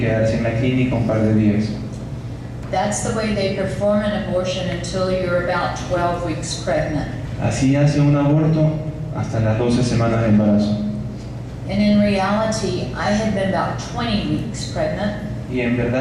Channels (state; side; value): identical; both; correlation 1.00